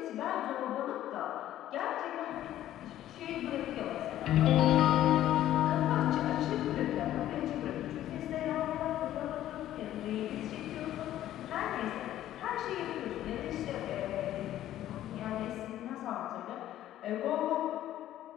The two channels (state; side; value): quieter; right; 12.8 dB